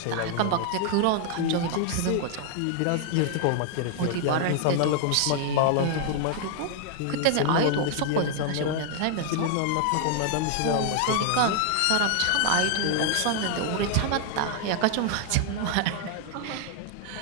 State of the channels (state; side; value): different; both; correlation 0.00